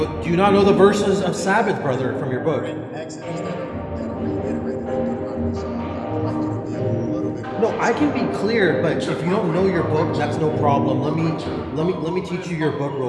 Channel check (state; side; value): identical; both; correlation 1.00